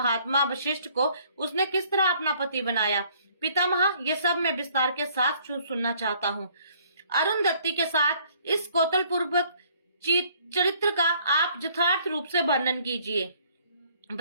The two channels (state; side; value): inverted; both; correlation -0.61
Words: वशिष्ठ को उसने किस तरह अपना पति बनाया? पितामह, ये सब मैं विस्तार के साथ सुनना चाहता हूँ। अरुंधति के साथ इस कौतल पूर्वक चरित्र का आप यथार्थ रूप से वर्णन कीजिए।